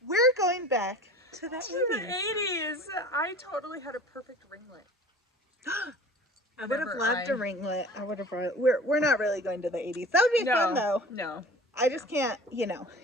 We're going back to the 80s. I totally had a perfect ringlet. I would have loved a ringlet. I would have. We're not really going to the 80s. That would be fun though. No. I just can't.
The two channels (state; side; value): normal; both; correlation 0.43